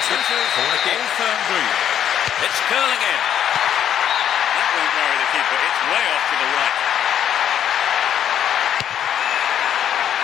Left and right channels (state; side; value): quieter; right; 9.7 dB